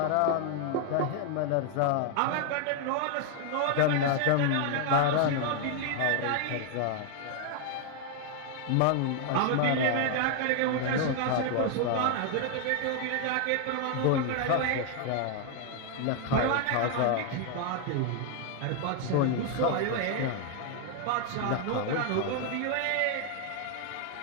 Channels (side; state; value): both; different; correlation 0.00